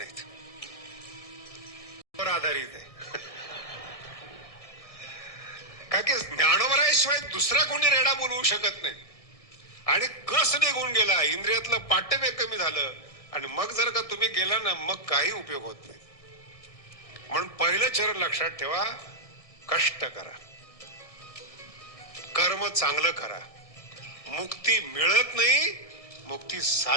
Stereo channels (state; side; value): late; right; 1.6 ms